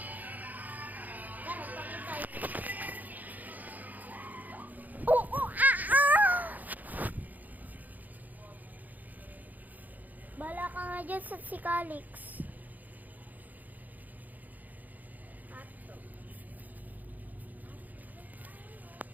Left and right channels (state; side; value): late; left; 0.082 ms